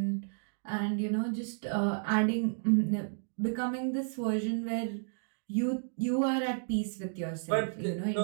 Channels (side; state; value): left; silent; digital silence